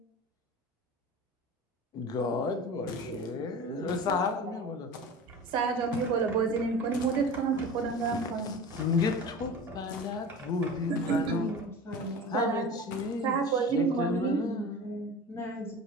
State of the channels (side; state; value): both; normal; correlation 0.35